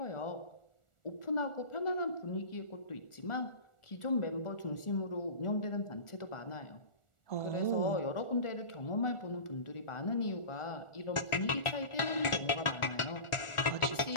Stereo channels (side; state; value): right; late; 1.4 ms